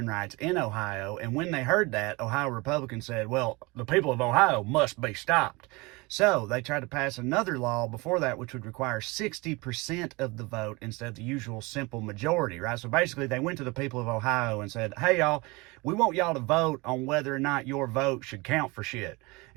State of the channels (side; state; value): left; quieter; 24.9 dB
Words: rights in Ohio. And when they heard that, Ohio Republicans said, well, the people of Ohio must be stopped. So they tried to pass another law before that, which would require 60% of the vote instead of the usual simple majority, right? So basically, they went to the people of Ohio and said, hey, y'all, we want y'all to vote on whether or not your vote should count for shit.